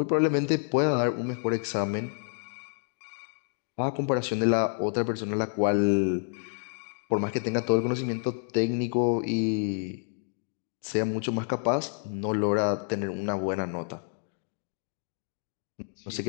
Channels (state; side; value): silent; right; 55 dB below the other